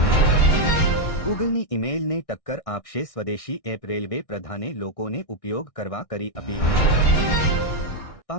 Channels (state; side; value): late; right; 1.6 ms